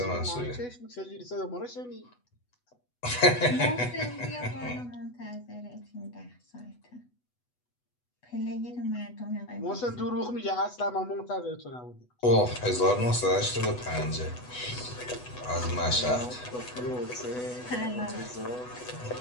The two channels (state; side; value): late; right; 8.1 ms